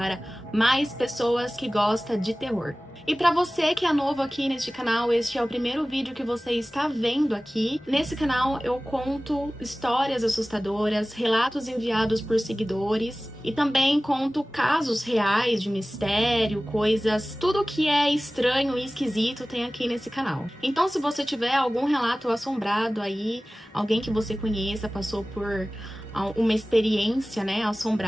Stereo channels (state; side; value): normal; both; correlation 0.97